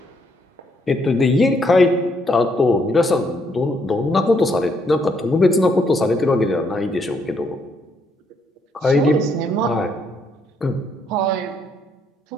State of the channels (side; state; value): both; normal; correlation 0.72